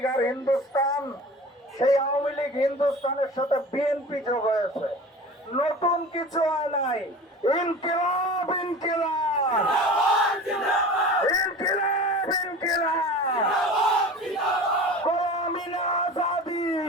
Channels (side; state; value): both; normal; correlation 0.37